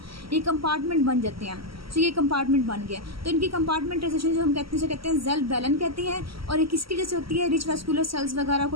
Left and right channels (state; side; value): late; left; 0.75 ms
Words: ये कंपार्टमेंट बन जाते हैं। तो ये कंपार्टमेंट बन गया, तो इनकी कंपार्टमेंटाइजेशन जो हम कहते हैं सेल बैलन कहते हैं। और ये किसकी वजह से होती है, रिच वेस्कुलर सेल्स वगैरह